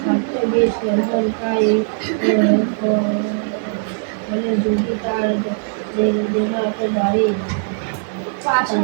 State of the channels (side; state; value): left; silent; 66 dB below the other